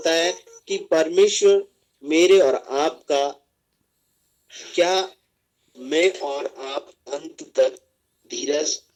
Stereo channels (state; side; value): identical; both; correlation 1.00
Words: है कि परमेश्वर मेरे और आपका, क्या मैं और आप अंत तक धीरज